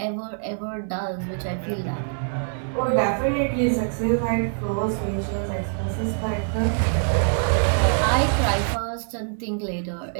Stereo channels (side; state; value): left; silent; digital silence